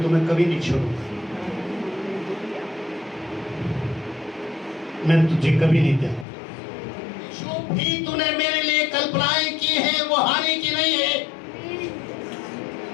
तुम्हें कभी नहीं छोड़ूंगा, मैं तुझे कभी नहीं दूंगा। जो भी तूने मेरे लिए कल्पनाएं की है वो हानि की नहीं है।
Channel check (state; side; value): drops out; right; at 6.2 s